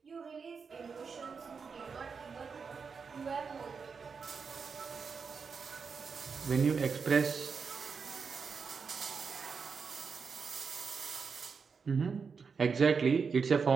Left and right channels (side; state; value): left; quieter; 5.5 dB